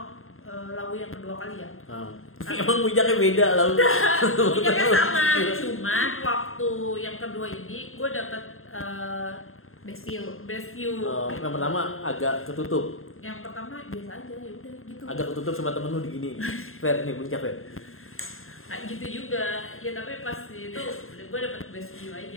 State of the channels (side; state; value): right; late; 0.61 ms